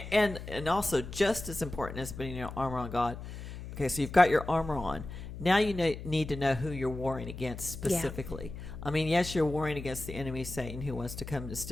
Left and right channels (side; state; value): left; noise; hum, 10 dB below the sound